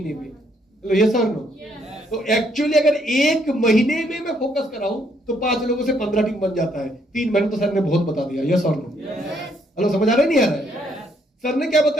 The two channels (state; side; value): normal; both; correlation 0.71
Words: में। तो ये सर नो, तो एक्चुअली अगर 1 महीने में मैं फोकस कराऊं तो 5 लोगों से 15 टीम बन जाता है। 3 महीने तो सर ने बहुत बता दिया। यस और नो? हेलो, समझ आ रहा है नहीं आ रहा है? सर ने क्या